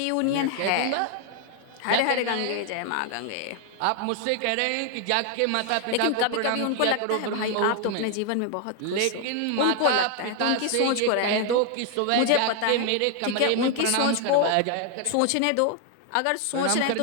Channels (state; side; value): different; both; correlation 0.00